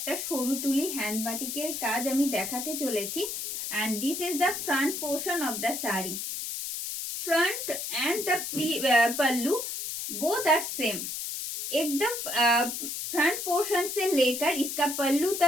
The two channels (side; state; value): left; noise; hiss, 5 dB below the sound